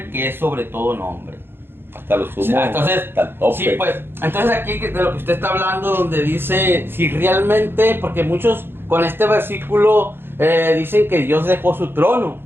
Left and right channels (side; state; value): left; late; 0.10 ms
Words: que es sobre todo nombre. Hasta lo sumo. O sea, entonces, hasta el tope. sí, pues, entonces aquí de lo que usted está hablando, donde dice, si realmente, porque muchos con este versículo dicen que Dios dejó su trono,